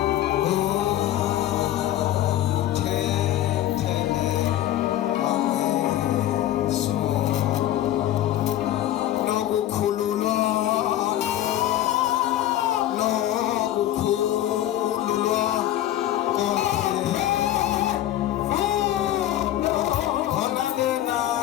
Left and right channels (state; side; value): quieter; right; 13.0 dB